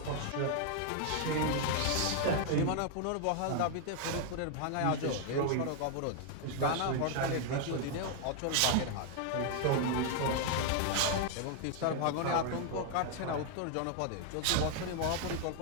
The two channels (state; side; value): different; both; correlation 0.00